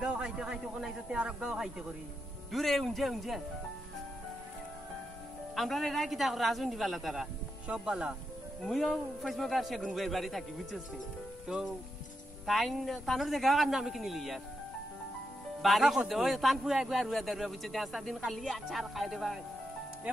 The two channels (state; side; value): normal; both; correlation 0.85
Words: গাঁও খাইতে খাইতে কোন আইসতে আর এক গাঁও খাইতে করি দূরে উঞ্জে আমরা রে কিতা রাজুন দিবালা তারা সব বালা মুইও ফেসবুক আর সেগুন বইয়ের বাড়ি থাকি বুঝছিস তো তানোর দেখা কান্না আমি কিনিলি ইয়ার বাড়ি করতে ওই তান পুয়া একবার রুয়া দারুয়া বুঝছে 5 দিন খালি আচার খাই দেবা